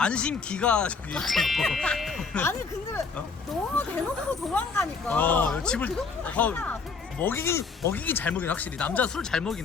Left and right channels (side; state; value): right; quieter; 4.9 dB